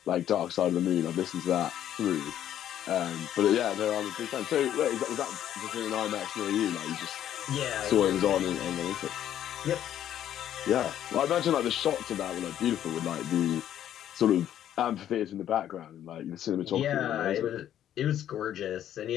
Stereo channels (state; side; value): quieter; right; 11.0 dB